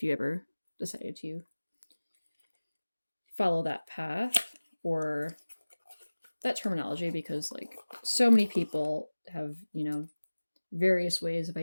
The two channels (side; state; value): both; inverted; correlation -1.00